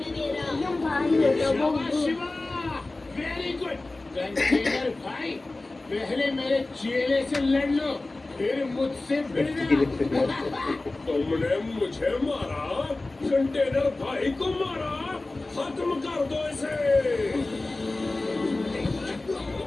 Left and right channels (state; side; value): quieter; right; 3.0 dB